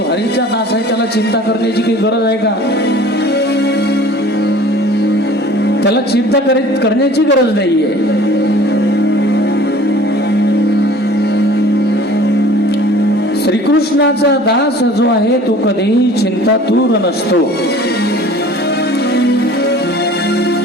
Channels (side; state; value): both; normal; correlation 0.47